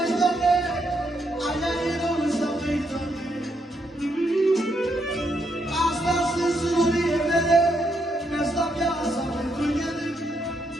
doamne, aia e Rosa mai doamne. Astea sunt surorile mele, mi-asta viața pentru ele.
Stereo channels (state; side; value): normal; both; correlation 0.78